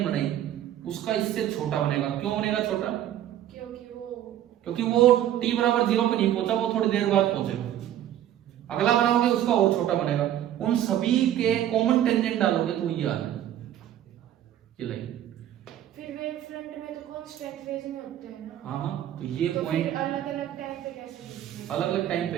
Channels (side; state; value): left; quieter; 11.7 dB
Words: बनाई, उसका इससे छोटा बनेगा। क्यों बनेगा छोटा? क्योंकि वो t बराबर 0 पे नहीं पहुंचा, वो थोड़ी देर बाद पहुंचेगा। अगला बनाओगे उसका और छोटा बनेगा। उन सभी के कॉमन टेंजेंट डालोगे तो ये आ जाए ये लाइन। फिर वेव फ्रंट में तो कांस्टेंट फेज में होते हैं ना। हाँ, तो ये पॉइंट अलग-अलग टाइम पे कैसे? अलग-अलग टाइम पे